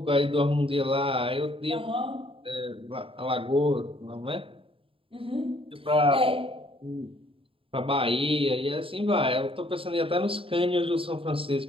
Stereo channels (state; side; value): late; left; 0.26 ms